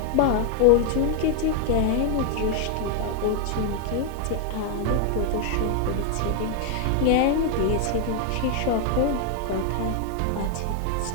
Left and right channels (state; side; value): different; both; correlation 0.00